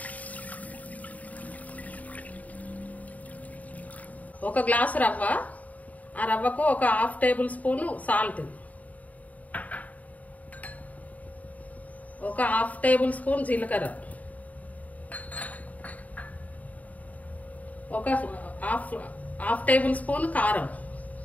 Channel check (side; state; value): right; late; 0.072 ms